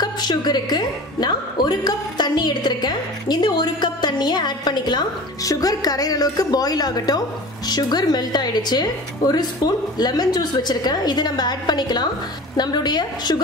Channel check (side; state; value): both; normal; correlation 0.37